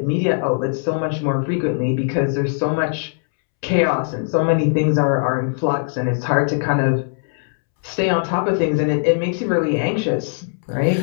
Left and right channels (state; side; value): silent; right; 66 dB below the other